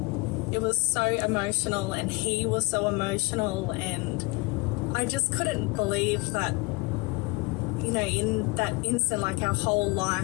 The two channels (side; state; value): right; quieter; 26.6 dB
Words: It was so emotional, and he was so emotional, and I just couldn't believe that, you know, in that instant, like, our whole